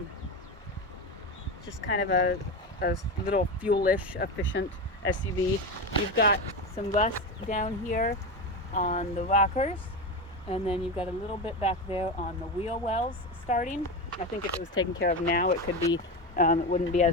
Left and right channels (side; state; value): both; normal; correlation 0.19